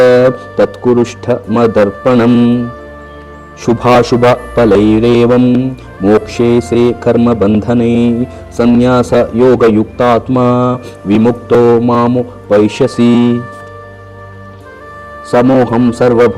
तत्कुरुष्ठमदर्पणम् शुभाशुभफलैरेवं मोक्षे से कर्मबन्धने संन्यासयोगयुक्तात्मा विमुक्तो मामुपैष्यसि समोहं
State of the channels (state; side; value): identical; both; correlation 1.00